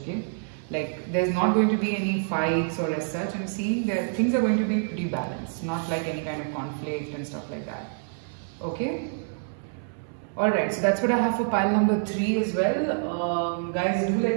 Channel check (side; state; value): left; silent; 60 dB below the other